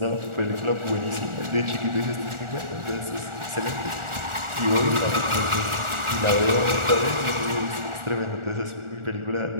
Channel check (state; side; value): late; left; 1.4 ms